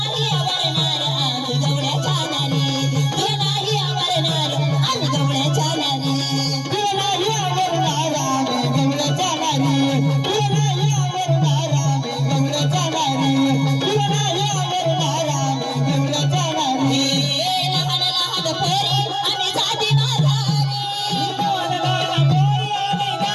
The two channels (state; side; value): identical; both; correlation 1.00